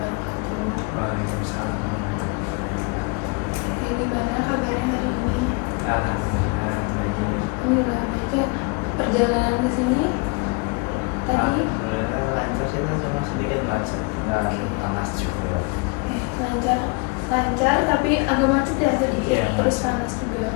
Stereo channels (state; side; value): quieter; right; 30.1 dB